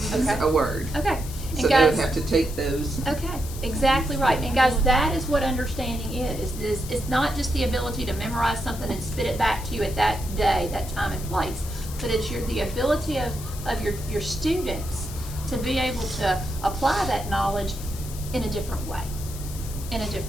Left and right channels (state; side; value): noise; left; hiss, 13 dB below the sound